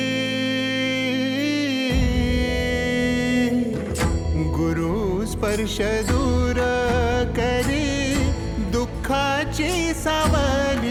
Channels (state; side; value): identical; both; correlation 1.00